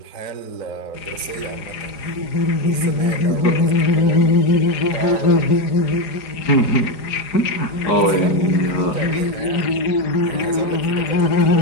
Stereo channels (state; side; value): late; right; 4.9 ms